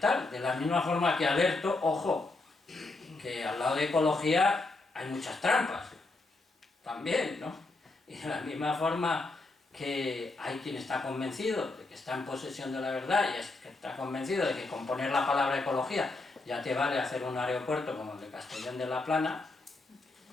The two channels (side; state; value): right; quieter; 3.3 dB